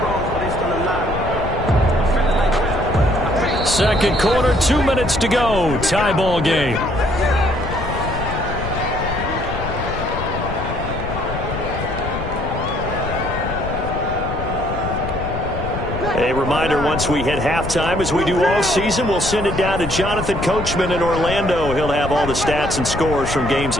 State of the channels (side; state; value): left; noise; rumble, 6 dB below the sound